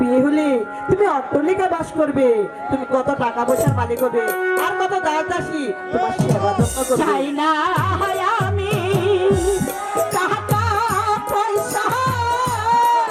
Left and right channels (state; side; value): identical; both; correlation 1.00